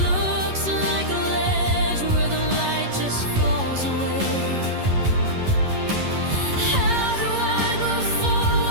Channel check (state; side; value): late; left; 11 ms